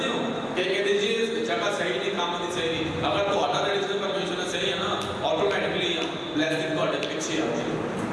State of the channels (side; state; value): both; identical; correlation 1.00